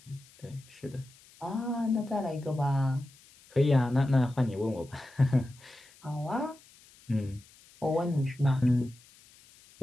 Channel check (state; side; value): noise; left; hiss, 26 dB below the sound